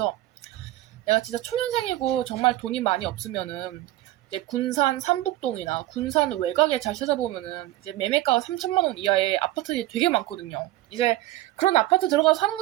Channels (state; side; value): quieter; left; 15.8 dB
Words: 내가 진짜 초년생이고 정말 돈이 많이 없으면은 이제 군산 삼북동이나 군산 외곽에 잘 찾아보면은 이제 매매가가 3천만 원 이하의 아파트들이 되게 많거든요. 이제 그런 아파트 들어가서 사는